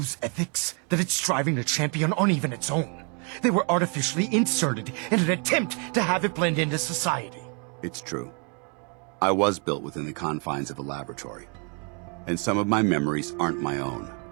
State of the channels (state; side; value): quieter; left; 37.0 dB